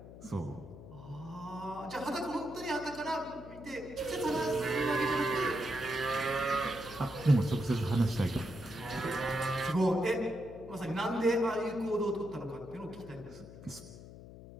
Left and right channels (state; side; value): noise; left; hum, 15 dB below the sound